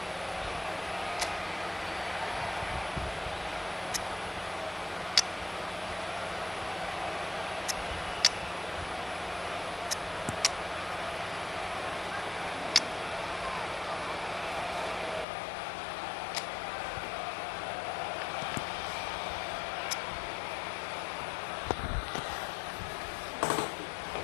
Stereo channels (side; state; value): right; drops out; at 15.2 s